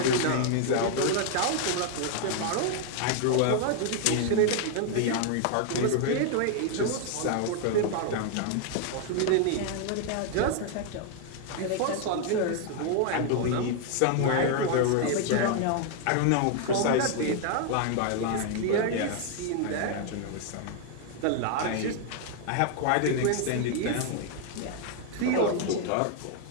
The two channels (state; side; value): different; both; correlation 0.00